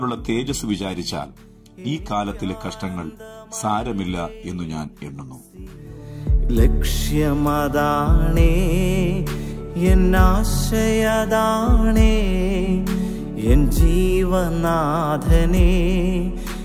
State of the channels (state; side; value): identical; both; correlation 1.00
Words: തേജസ് വിചാരിച്ചാൽ ഈ കാലത്തിലെ കഷ്ടങ്ങൾ സാരമില്ല എന്നു ഞാൻ എണ്ണുന്നു. ലക്ഷ്യമതാണേ, എൻ ആശയതാണേ, എൻ ജീവനാഥനെ